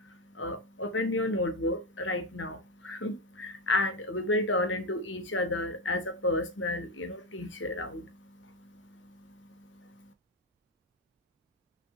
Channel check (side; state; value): both; normal; correlation 0.11